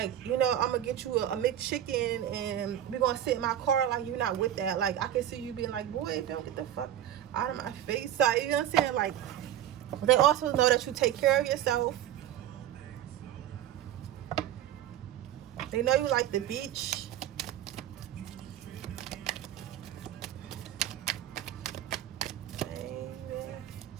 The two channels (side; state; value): left; quieter; 11.5 dB